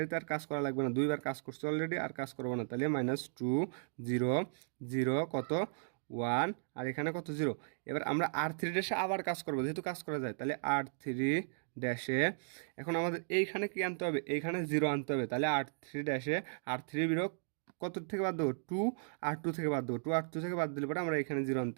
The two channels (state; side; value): silent; left; digital silence